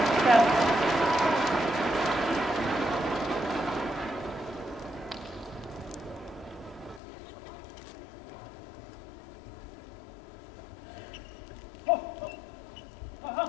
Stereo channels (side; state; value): right; drops out; at 7.0 s